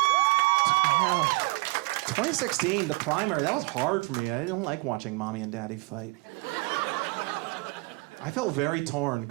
Yeah. 2016, the primary, that was hard for me. I don't like watching mommy and daddy fight. I felt very torn,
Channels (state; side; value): quieter; left; 27.8 dB